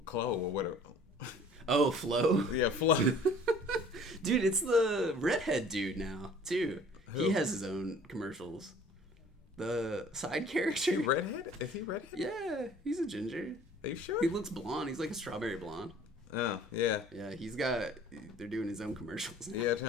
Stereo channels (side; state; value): both; normal; correlation 0.51